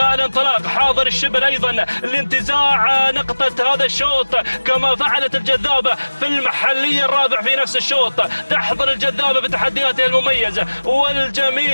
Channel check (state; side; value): inverted; both; correlation -1.00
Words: الانطلاق. حاضر الشبل أيضا لانتزاع نقطة هذا الشوط كما فعلت الجذابة في المحلي الرابع في نفس الشوط. تحضر الجذابة بتحدياتها المميزة